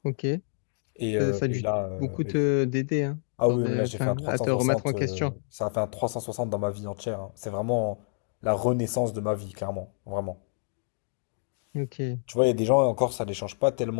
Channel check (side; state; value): right; silent; digital silence